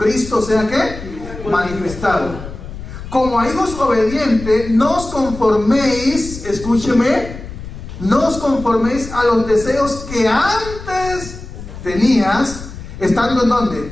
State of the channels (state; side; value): noise; left; rumble, 12 dB below the sound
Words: sea ¿qué? Manifestado. Como a hijos obedientes, no os conforméis, escúcheme, no os conforméis a los deseos que antes tenías, estando ¿en